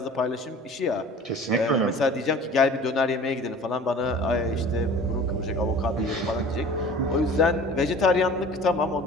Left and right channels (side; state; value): both; normal; correlation 0.43